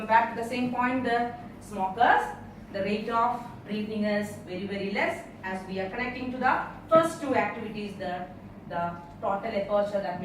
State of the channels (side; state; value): both; identical; correlation 1.00